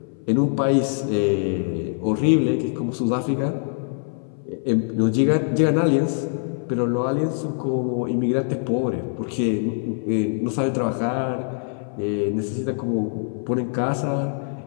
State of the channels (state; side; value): silent; right; 60 dB below the other